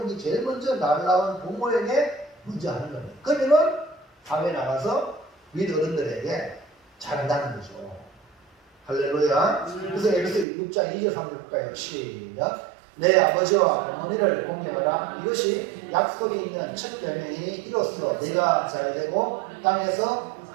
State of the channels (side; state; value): left; drops out; at 10.5 s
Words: 게 제일 먼저 날라온 부모에게 먼저 하는 겁니다. 그러면은 사회에 나가서 윗 어른들에게 잘한다는 거죠. 할렐루야. 그래서 에베소 6장 2절 3절 볼까요? 시작. 내 아버지와 어머니를 공경하라. 이것이 약속이 있는 첫 계명이 이로써 네가 잘되고 땅에서